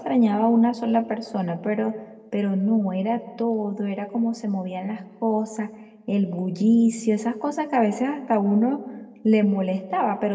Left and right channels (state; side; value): identical; both; correlation 1.00